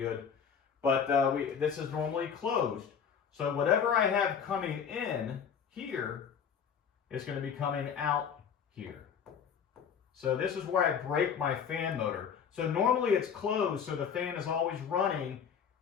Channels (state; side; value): quieter; right; 7.2 dB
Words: But this is normally closed. So whatever I have coming in here is going to be coming out here. So this is where I break my fan motor. So normally it's closed, so the fan is always running